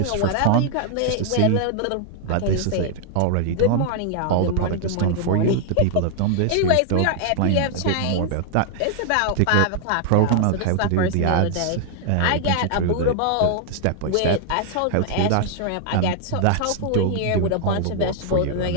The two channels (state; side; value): different; both; correlation 0.00